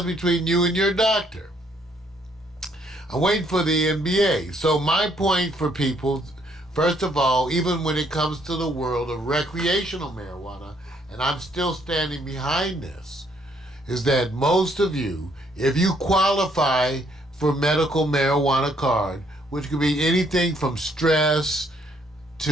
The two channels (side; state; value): both; normal; correlation 0.68